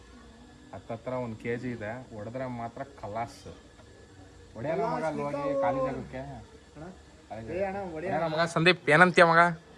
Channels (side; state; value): both; identical; correlation 1.00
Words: ಹತ್ತತ್ರ 1 kg ಇದೆ. ಹೊಡೆದ್ರೆ ಮಾತ್ರ ಕಲಾಸ್ ಹೊಡೆಯೋಣ ಮಗ. ಅಲ್ಲಿ ಹೋಗಿ ಖಾಲಿ ಜಾಗಕ್ಕೆ ಮಗ. ಸಂದೀಪ್ ಏನಂತೀಯ ಮಗ?